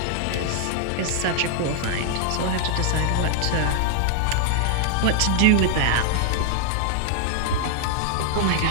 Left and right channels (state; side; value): different; both; correlation 0.00